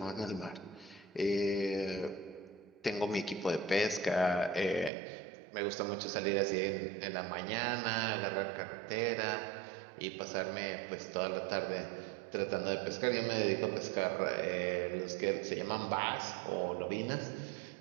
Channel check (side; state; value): left; drops out; at 4.9 s